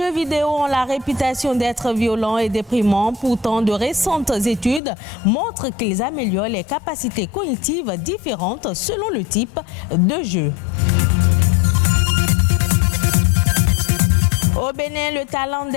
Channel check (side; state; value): right; drops out; at 4.8 s